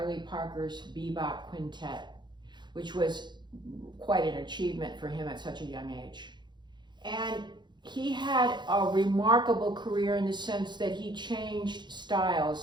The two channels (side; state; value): left; late; 0.22 ms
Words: Parker's bebop quintet, which was quite an achievement for him at such a young age. And he had a remarkable career in the sense that he changed